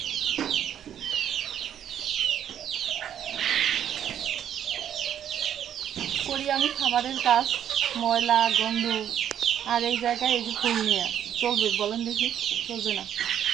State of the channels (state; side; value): quieter; left; 9.9 dB